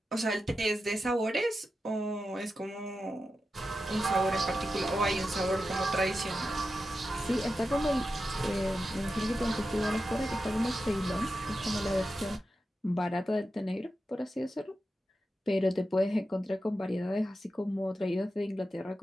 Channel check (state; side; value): normal; both; correlation 0.90